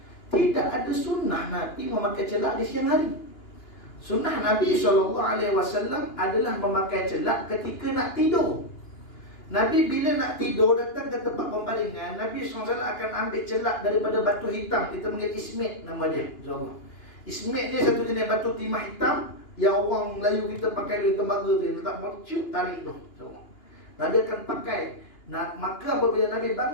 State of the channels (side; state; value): right; late; 2.9 ms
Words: Tidak ada sunnah Nabi memakai celak di siang hari. Sunnah Nabi SAW adalah memakai celak ketika nak tidur. Nabi bila nak tidur datang ke tempat pembaringan, Nabi SAW akan ambil celak daripada batu hitam. Kita panggil ismit nama dia, insyaAllah. Ismit ni satu jenis batu timah hitam yang orang Melayu kita pakai di tembaga tu, letak mercuk, tarik tu, insyaAllah. Nabi akan pakai. Maka apabila Nabi